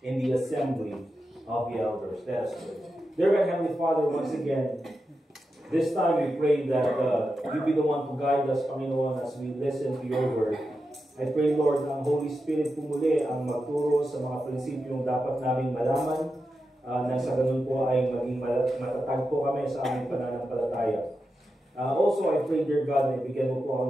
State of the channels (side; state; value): both; normal; correlation 0.89